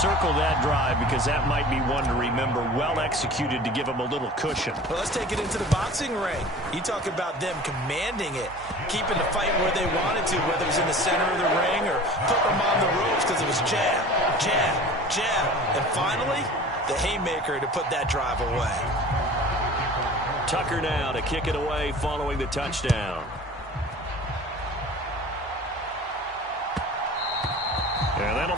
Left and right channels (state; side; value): normal; both; correlation 0.41